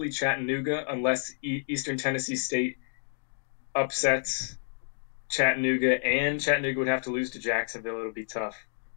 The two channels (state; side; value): silent; right; digital silence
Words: Chattanooga unless Eastern Tennessee State upsets Chattanooga, and Chattanooga would have to lose to Jacksonville. It'll be tough.